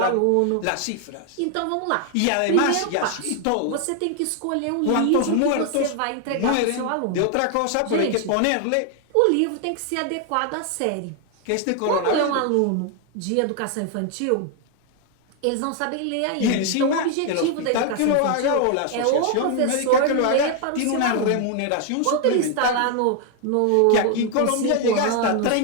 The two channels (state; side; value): different; both; correlation 0.01